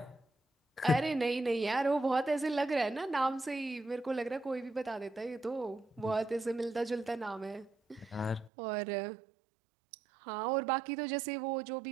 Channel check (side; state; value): left; drops out; at 8.5 s